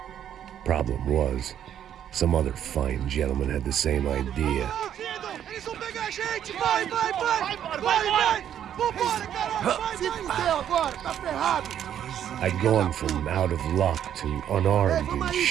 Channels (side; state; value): left; quieter; 10.0 dB